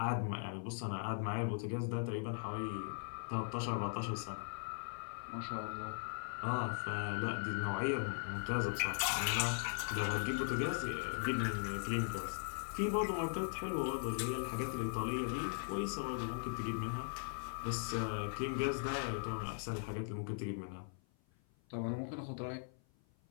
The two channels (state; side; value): silent; right; 51 dB below the other